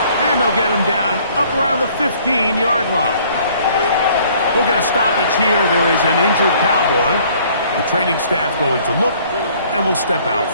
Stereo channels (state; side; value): inverted; both; correlation -0.58